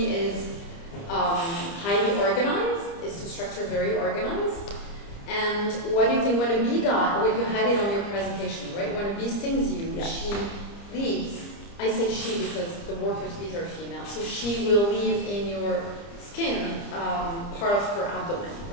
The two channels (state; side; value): late; right; 30 ms